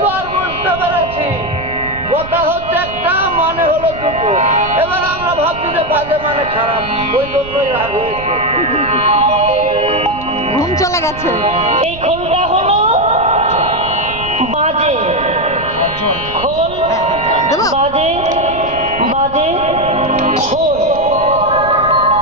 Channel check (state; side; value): noise; right; rumble, 14 dB below the sound